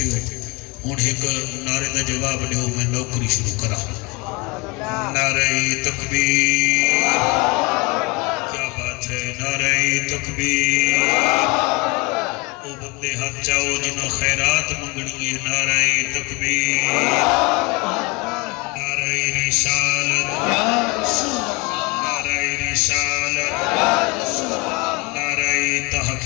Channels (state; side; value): quieter; right; 26.4 dB